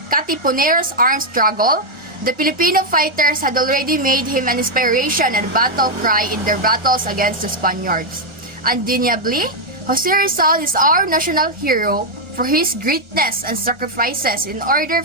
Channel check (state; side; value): late; left; 1.3 ms